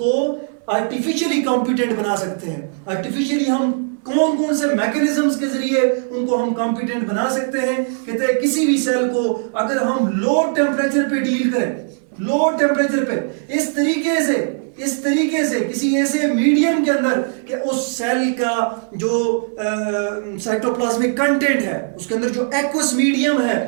आर्टिफिशियली कॉम्पिटेंट बना सकते हैं। आर्टिफिशियली हम कौन कौन से मैकेनिज्म्स के जरिए उनको हम कॉम्पिटेंट बना सकते हैं। कहते हैं किसी भी सेल को अगर हम लो टेम्परेचर पे डील करें, लो टेम्परेचर पे इस तरीके से किसी ऐसे मीडियम के अंदर कि उस सेल का जो साइटोप्लाज्मिक कंटेंट है, उसके अंदर जो एक्वस मीडियम है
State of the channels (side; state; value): left; silent; digital silence